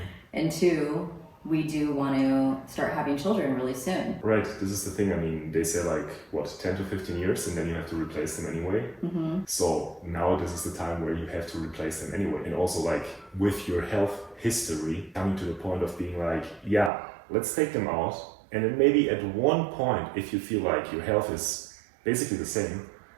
and two, we do want to start having children really soon. Right, this is the thing. I mean, they say like, what, 10 to 15 years, and then you have to replace them anyway. So now this is the time where you have to replace them anyway. And also like with your health history, coming to the point of being like, yeah, let's take them out. And then maybe at one point, if you feel like your health is basically the same,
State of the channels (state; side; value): drops out; left; at 16.9 s